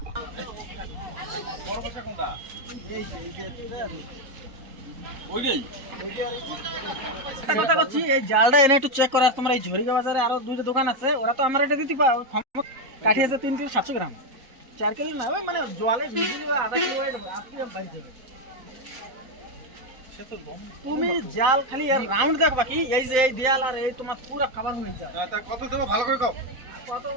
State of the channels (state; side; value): late; left; 3.9 ms